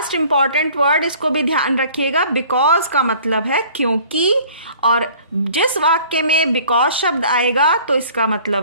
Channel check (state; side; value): inverted; both; correlation -0.51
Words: इंपॉर्टेंट वर्ड, इसको भी ध्यान रखिएगा। बिकॉज का मतलब है क्योंकि, और जिस वाक्य में बिकॉज शब्द आएगा तो इसका